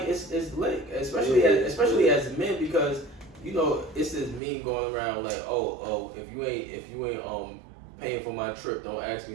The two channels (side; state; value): left; drops out; at 4.4 s